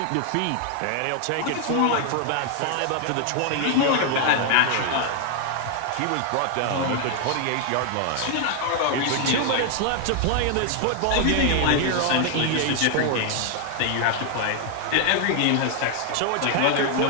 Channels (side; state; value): both; different; correlation 0.00